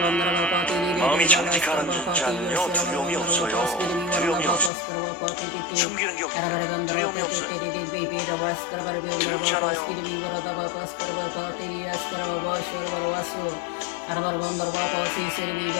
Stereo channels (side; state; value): right; drops out; at 4.7 s